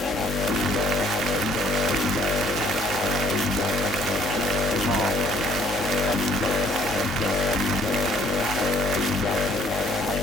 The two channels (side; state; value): both; normal; correlation 0.61